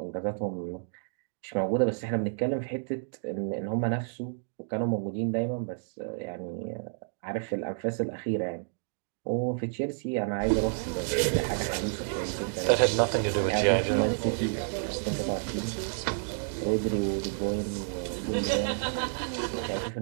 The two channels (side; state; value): left; silent; digital silence